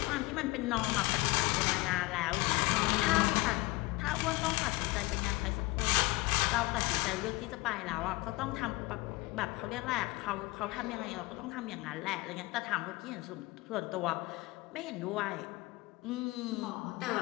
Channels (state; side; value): quieter; right; 22.4 dB